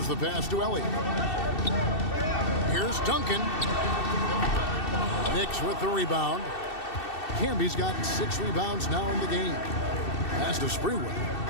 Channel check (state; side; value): late; right; 2.7 ms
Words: the pass to Elliott. Here's Duncan. Knicks with the rebound. Camby's got 6 rebounds now in the game. Pass to Sprewell.